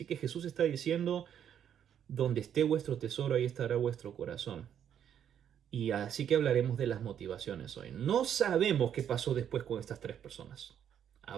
que Jesús está diciendo, donde esté vuestro tesoro, ahí estará vuestro corazón. Y así que hablaremos de las motivaciones hoy. No sabemos qué pasó después con estas tres personas.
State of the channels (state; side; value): quieter; left; 9.2 dB